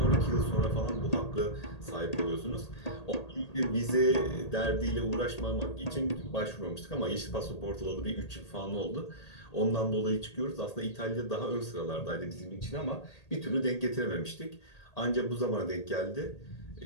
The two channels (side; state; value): right; late; 1.8 ms